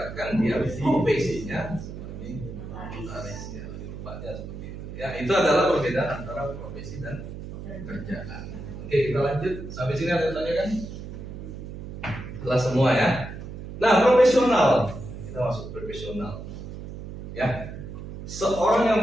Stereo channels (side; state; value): right; noise; hum, 10 dB below the sound